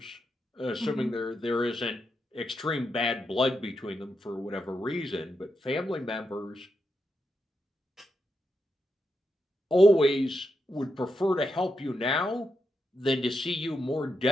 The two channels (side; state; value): both; normal; correlation 0.84